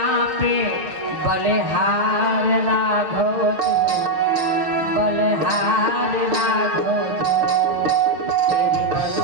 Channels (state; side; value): late; left; 6.5 ms